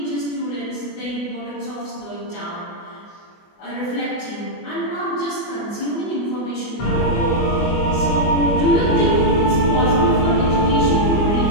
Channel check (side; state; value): right; late; 24 ms